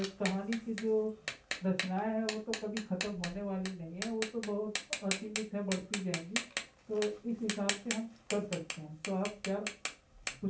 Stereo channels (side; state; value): both; identical; correlation 1.00